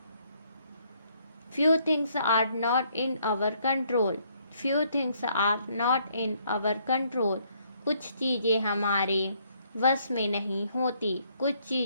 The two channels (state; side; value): inverted; both; correlation -0.68